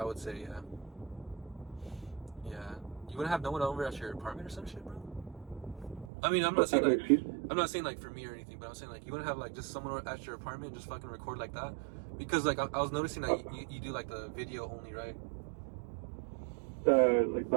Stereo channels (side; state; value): left; drops out; at 6.1 s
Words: would say. Yeah. You wouldn't have no one over at your apartment or some shit, bro? I mean, I'm not saying like for me or anything, but I'm saying like you wouldn't have like just someone at your apartment and just fucking record like that, because like I was noticing that you do like the video only, right? Like